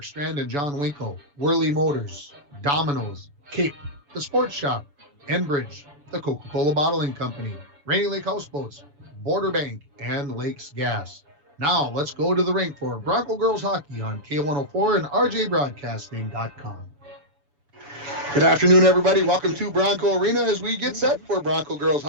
Strand and John Winkle, Worley Motors, Domino's, Cape, The Sports Shop, Enbridge, the Coca-Cola Bottling Company, Rainy Lake Houseboats, Border Bank, and Lakes Gas. Now let's go to the rink for Bronco Girls Hockey on K104 and RJBroadcasting.com. Good afternoon, everybody. Welcome to Bronco Arena as we get set for Bronco Girls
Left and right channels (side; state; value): left; late; 6.9 ms